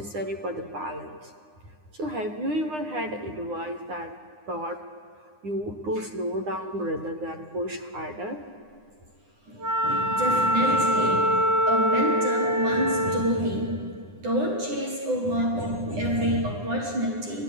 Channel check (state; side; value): late; left; 9.8 ms